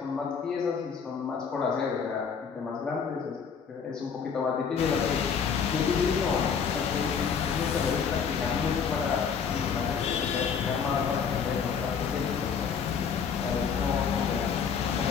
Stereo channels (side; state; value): right; quieter; 6.5 dB